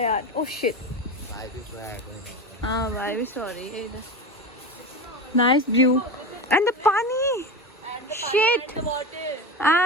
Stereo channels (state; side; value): normal; both; correlation 0.24